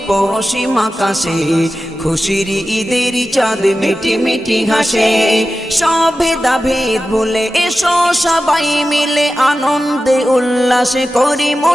পশ্চিম আকাশে খুশির ঈদের চাঁদ মিটি মিটি হাসে। সব ভেদাভেদ ভুলে এসো সবাই মিলে আনন্দে উল্লাসে করি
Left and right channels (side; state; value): both; normal; correlation 0.93